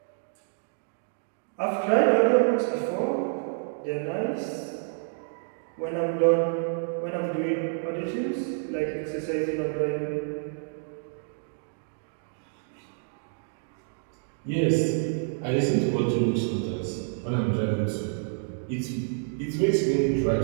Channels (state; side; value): silent; left; digital silence